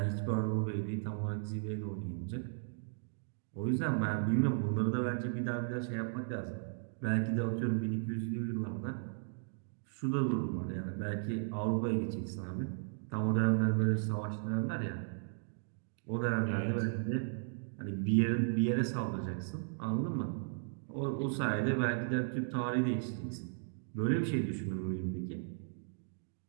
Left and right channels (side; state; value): left; silent; digital silence